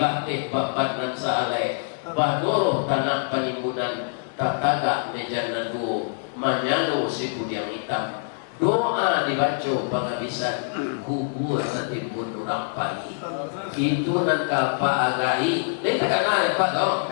bapak dan saalai. Badoro tanah penimbunan. Tak tagak meja nadu. Manyano si yang hitam. Doa dibaca penghabisan kubur setimbun orang pagi. Itu nan kalpa agai. Ini tak kenal Pak dong.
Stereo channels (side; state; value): right; silent; digital silence